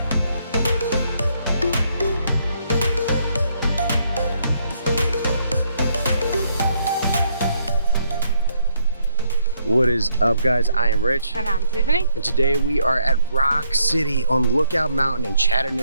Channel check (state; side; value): inverted; both; correlation -0.71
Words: What is up, guys? I am Rich. And I'm Tiffany. And today we are at Rock City on Lookout Mountain in